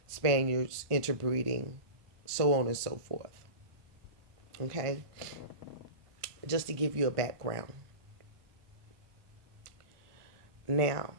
Spaniards interbreeding, so on and so forth. Okay? just to give you a background. Now,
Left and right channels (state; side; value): late; left; 1.4 ms